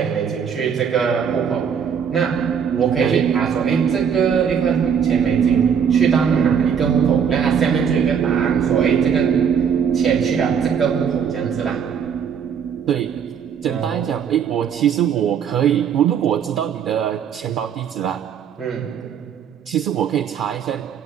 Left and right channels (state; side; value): quieter; left; 7.5 dB